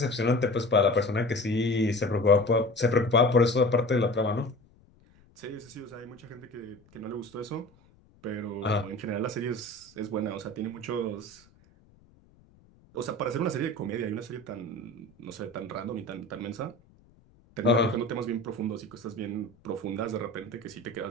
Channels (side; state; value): left; noise; rumble, 29 dB below the sound